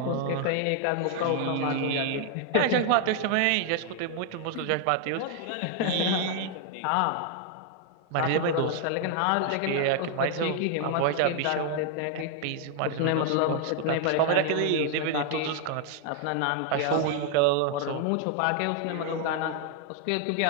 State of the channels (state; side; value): different; both; correlation 0.00